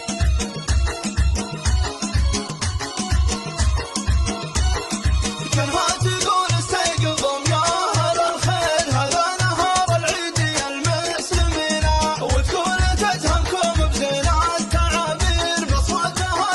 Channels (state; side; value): identical; both; correlation 1.00